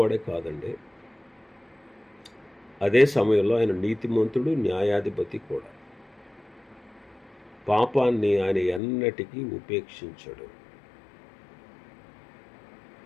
కాదండి, అదే సమయంలో ఆయన నీతిమంతుడు, న్యాయాధిపతి కూడా. పాపాన్ని ఆయన ఎన్నటికీ ఉపేక్షించడు.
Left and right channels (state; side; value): drops out; right; at 8.8 s